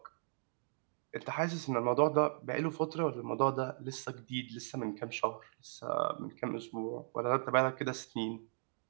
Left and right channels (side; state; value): left; silent; digital silence